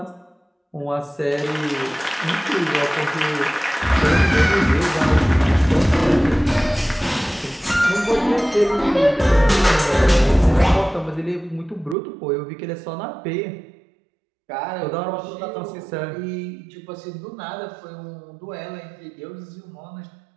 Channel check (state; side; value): drops out; left; at 12.0 s